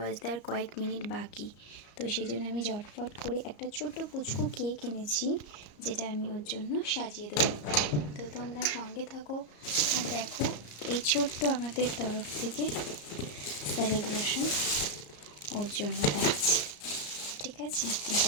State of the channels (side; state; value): right; late; 34 ms